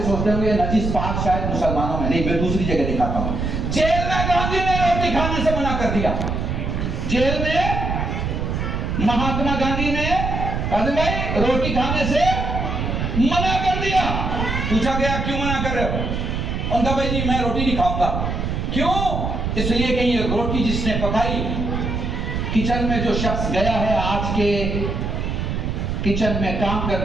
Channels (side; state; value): right; noise; rumble, 2 dB below the sound